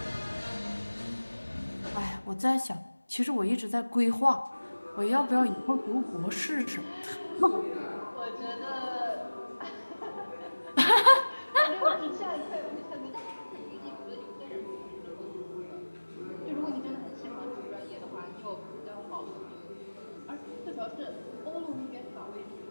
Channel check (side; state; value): both; inverted; correlation -1.00